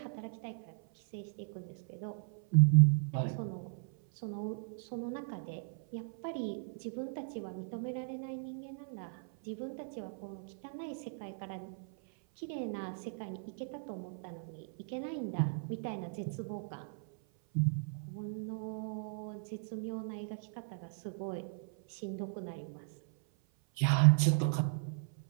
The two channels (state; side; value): silent; left; 53 dB below the other